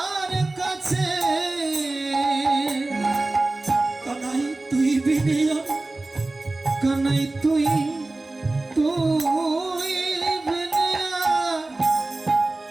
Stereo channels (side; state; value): left; quieter; 3.0 dB